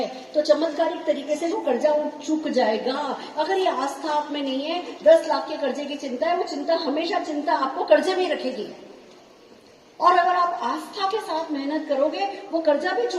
तो चमत्कारिक तरीके से वो कर्जा चुक जाएगा। अगर ये आस्था आप में नहीं है, 10 लाख के कर्जे की चिंता है, वो चिंता हमेशा चिंता आपको कर्जे में रखेगी। और अगर आप आस्था के साथ मेहनत करोगे, वो कर्जा भी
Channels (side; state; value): both; identical; correlation 1.00